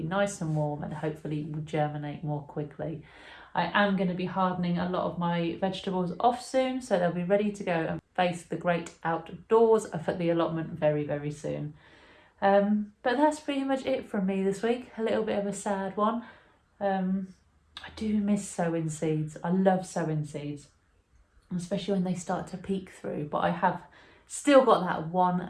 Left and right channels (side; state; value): both; identical; correlation 1.00